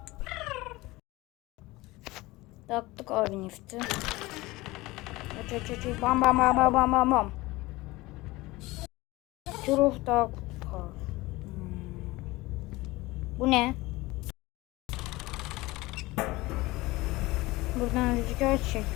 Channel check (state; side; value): quieter; right; 20.5 dB